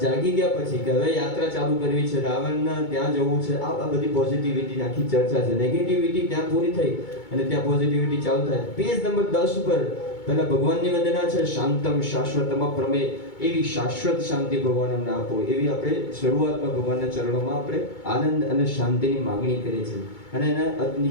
જાગી ગયા પછી કે હવે યાત્રા ચાલુ કરવી છે, રાવણના ત્યાં જવું છે. આ બધી પોઝિટિવિટી આખી ચર્ચા છે. નેગેટિવિટી ત્યાં પૂરી થઈ અને ત્યાં પોઝિટિવિટી ચાલુ થાય. પેજ નંબર 10 ઉપર પહેલા ભગવાનની વંદના છે, શાંતમ શાશ્વતમ પ્રમેય, એવી શાશ્વત શાંતિ ભગવાન અમને આપો. એવી આપણે શરૂઆતમાં ભગવાનના ચરણોમાં આપણે આનંદ અને શાંતિની માગણી કરીએ છીએ. અને એના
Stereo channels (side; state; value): right; late; 2.2 ms